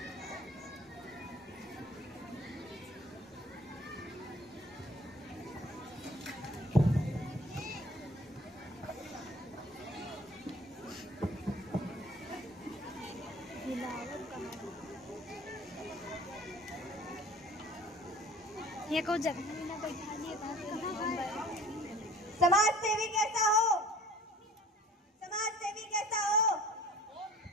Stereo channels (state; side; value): normal; both; correlation 0.47